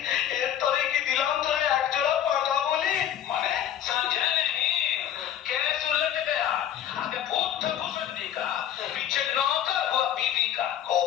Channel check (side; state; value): right; quieter; 10.5 dB